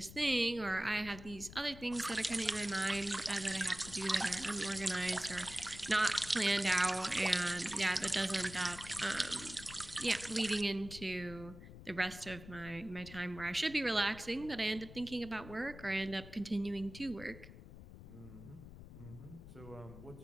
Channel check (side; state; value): left; noise; rumble, 15 dB below the sound